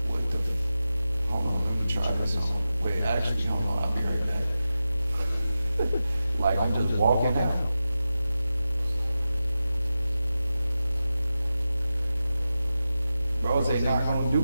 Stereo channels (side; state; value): both; inverted; correlation -0.92